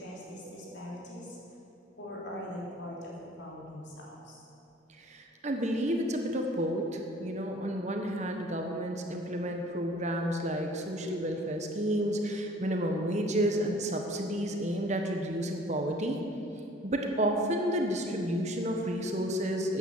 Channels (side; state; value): both; normal; correlation 0.52